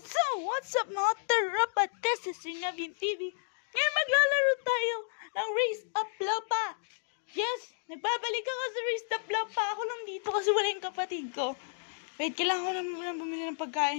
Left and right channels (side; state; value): right; silent; digital silence